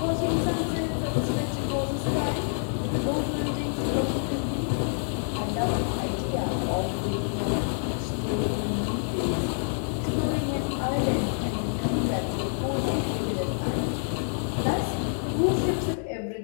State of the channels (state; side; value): silent; right; digital silence